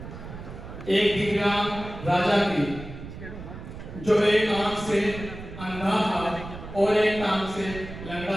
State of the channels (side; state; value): right; noise; rumble, 12 dB below the sound